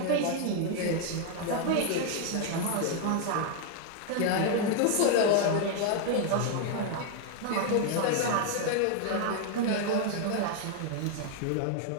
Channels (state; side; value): different; both; correlation 0.00